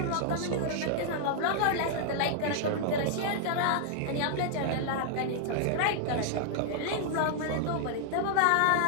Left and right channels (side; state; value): both; different; correlation -0.01